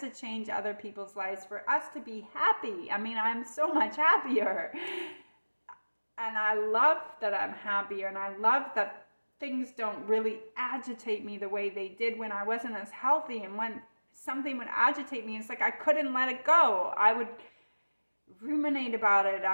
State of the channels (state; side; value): inverted; both; correlation -1.00